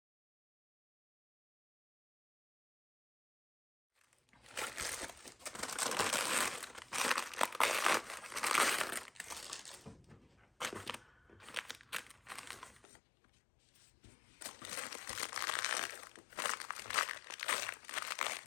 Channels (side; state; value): right; drops out; at 12.9 s